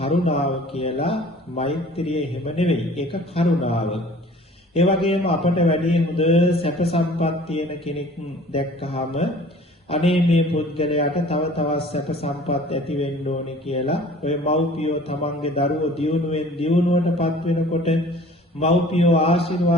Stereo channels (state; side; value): normal; both; correlation 0.48